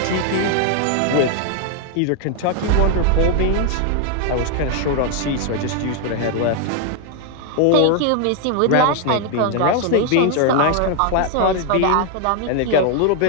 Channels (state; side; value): different; both; correlation 0.01